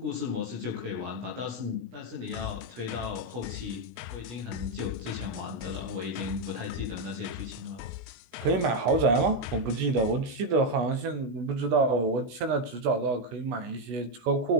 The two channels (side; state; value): left; late; 16 ms